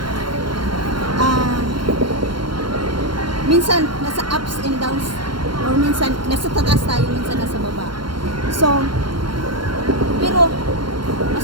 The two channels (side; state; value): left; late; 0.72 ms